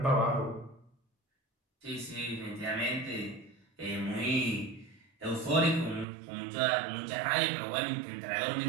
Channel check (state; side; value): drops out; left; at 6.1 s